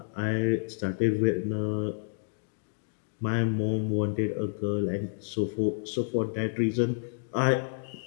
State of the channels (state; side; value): silent; right; digital silence